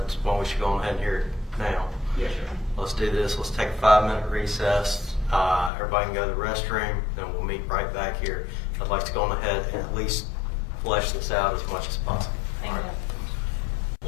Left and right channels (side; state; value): right; drops out; at 5.7 s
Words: why we should go on ahead and hear it now. Yes, sir. Let's do this. Let's take a 5-minute recess. Everybody can go to the restroom, then we'll meet right back here. I'd like to go on ahead and at least flesh this out as much as possible. Thank All right. you.